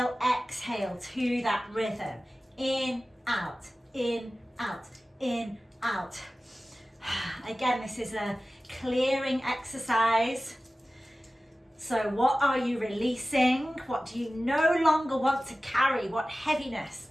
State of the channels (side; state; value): both; normal; correlation 0.96